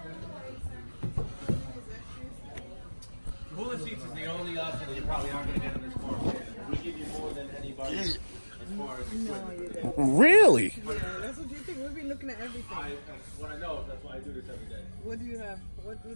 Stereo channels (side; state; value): both; inverted; correlation -1.00